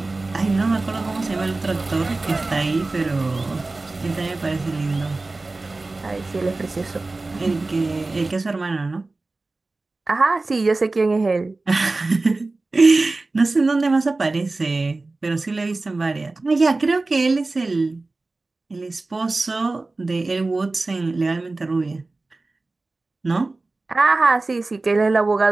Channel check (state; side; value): quieter; left; 3.3 dB